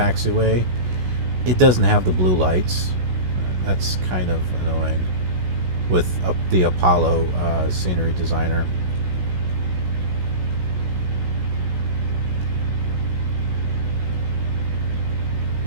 it doesn't have the blue lights. That's kind of annoying with the Apollo scenery designer.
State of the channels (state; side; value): late; left; 16 ms